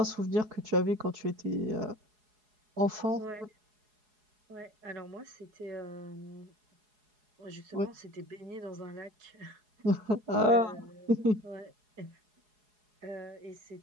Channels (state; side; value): late; left; 4.8 ms